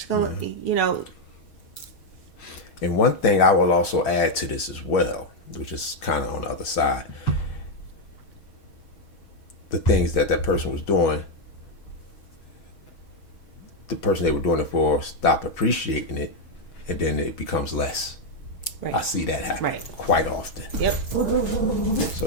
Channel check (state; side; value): late; right; 6.5 ms